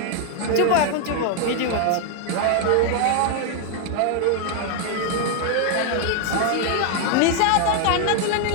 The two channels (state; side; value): different; both; correlation 0.00